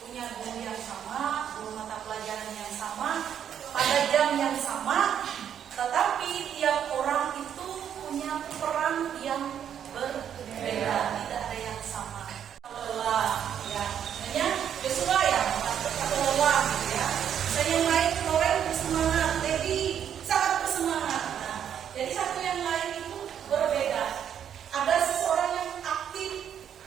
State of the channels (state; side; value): quieter; left; 9.1 dB